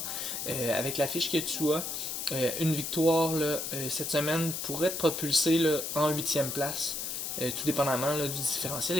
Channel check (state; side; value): noise; left; hiss, 4 dB below the sound